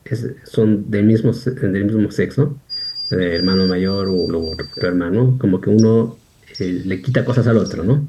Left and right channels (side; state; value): both; identical; correlation 1.00